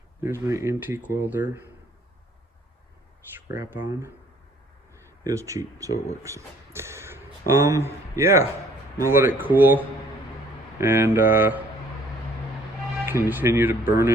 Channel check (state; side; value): normal; both; correlation 0.59